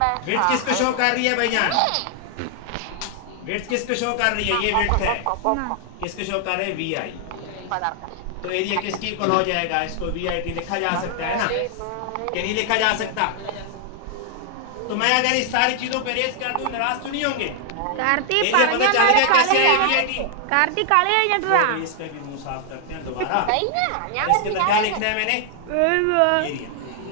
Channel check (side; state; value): both; different; correlation 0.00